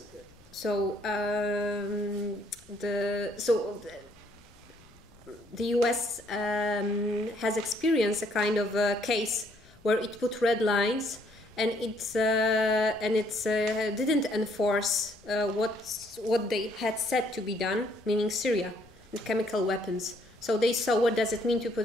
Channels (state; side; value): noise; left; rumble, 27 dB below the sound